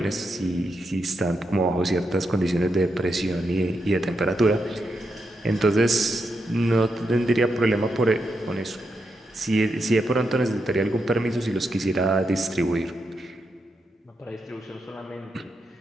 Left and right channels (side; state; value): both; normal; correlation 0.84